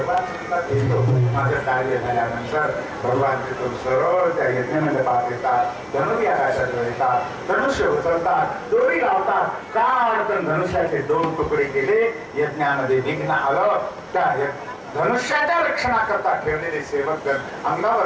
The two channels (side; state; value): both; identical; correlation 1.00